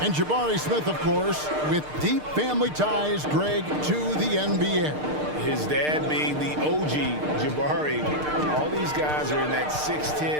And Jabari Smith, of course, with deep family ties, Greg, to the NBA. His dad being the OG Jabari. All these guys are in that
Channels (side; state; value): left; late; 6.6 ms